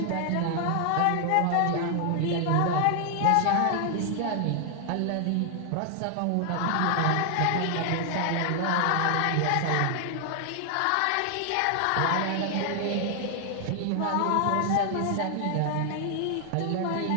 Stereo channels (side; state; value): both; different; correlation 0.00